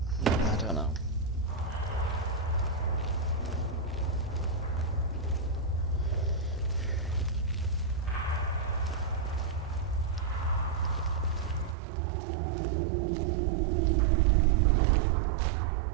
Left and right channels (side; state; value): left; drops out; at 11.8 s